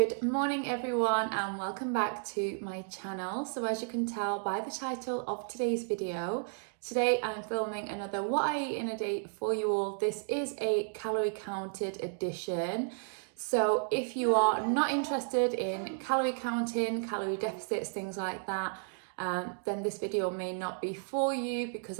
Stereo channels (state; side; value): silent; left; 56 dB below the other